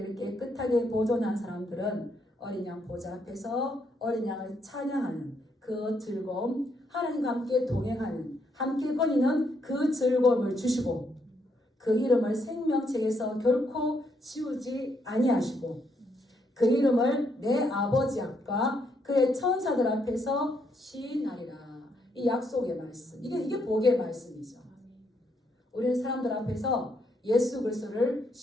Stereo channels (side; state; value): both; normal; correlation 0.75